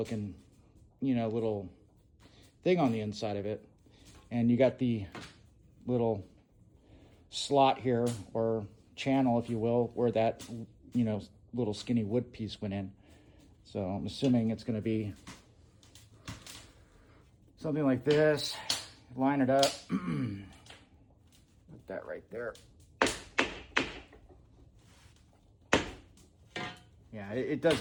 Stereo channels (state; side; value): identical; both; correlation 1.00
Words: little thing on the inside of it. And you got the little slot here, or channel, if you will, where that, little skinny wood piece went in. So I'm assuming it's going to be something like this. Line it up. Put that right there. Yeah, it